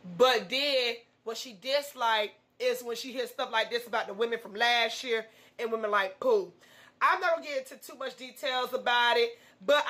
But then what she disliked is when she hears stuff like this about the women from last year and women like Pooh. I'm not going to get into too much details about it. But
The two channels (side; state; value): both; identical; correlation 1.00